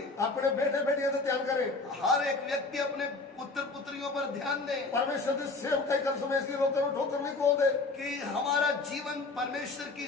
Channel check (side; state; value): right; quieter; 3.6 dB